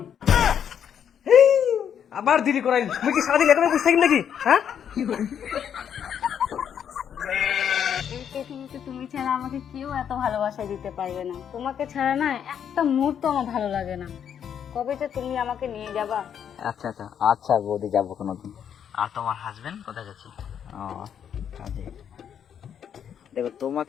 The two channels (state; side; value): quieter; right; 8.6 dB